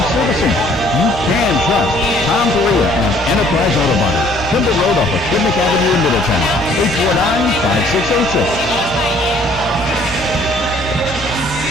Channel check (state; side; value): noise; left; hum, 13 dB below the sound